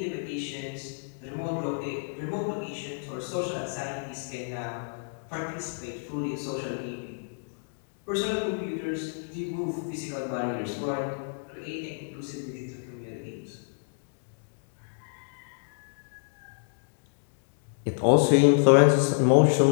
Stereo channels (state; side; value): silent; right; digital silence